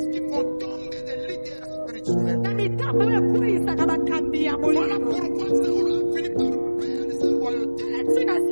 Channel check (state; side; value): inverted; both; correlation -1.00